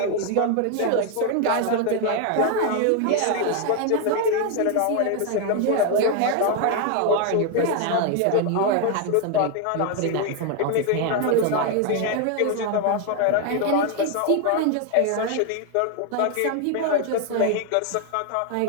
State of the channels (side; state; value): both; different; correlation 0.01